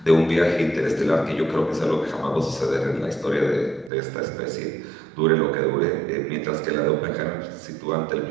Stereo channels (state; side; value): drops out; left; at 3.9 s